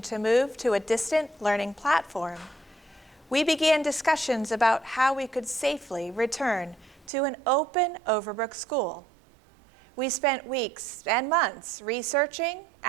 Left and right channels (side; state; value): left; drops out; at 7.1 s